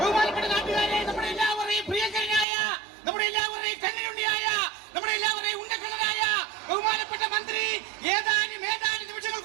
ബഹുമാനപ്പെട്ട നാട്ടുകാരെ, നമ്മുടെ എല്ലാവരെയും പ്രിയങ്കരനായ, നമ്മുടെ എല്ലാവരെയും കണ്ണിലുണ്ണിയായ, നമ്മുടെ എല്ലാവരെയും ഉണ്ടക്കണ്ണനായ ബഹുമാനപ്പെട്ട മന്ത്രി ഏതാനും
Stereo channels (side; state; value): left; drops out; at 2.5 s